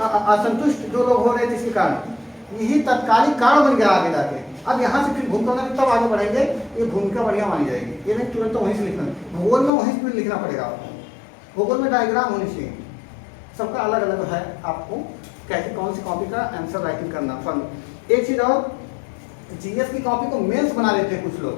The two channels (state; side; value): drops out; right; at 9.7 s